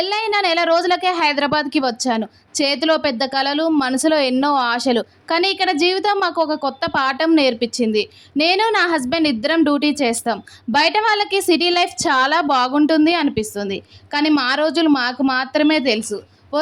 నెల రోజులకే హైదరాబాద్‌కి వచ్చాను. చేతిలో పెద్ద కలలు, మనసులో ఎన్నో ఆశలు. కానీ ఇక్కడ జీవితం మాకు ఒక కొత్త పాఠం నేర్పించింది. నేను నా హస్బెండ్ ఇద్దరం డ్యూటీ చేస్తాం. బయట వాళ్ళకి సిటీ లైఫ్ చాలా బాగుంటుంది అనిపిస్తుంది. కానీ మా రోజులు మాకు మాత్రమే తెలుసు.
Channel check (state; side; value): identical; both; correlation 1.00